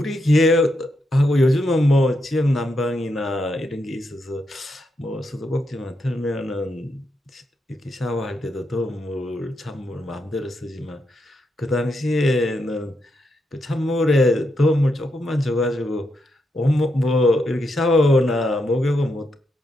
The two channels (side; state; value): both; normal; correlation 0.82